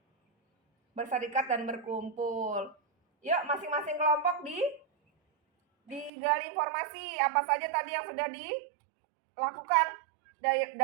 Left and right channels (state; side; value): drops out; left; at 6.1 s